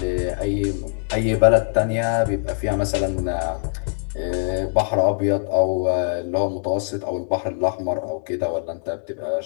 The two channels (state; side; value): silent; right; 64 dB below the other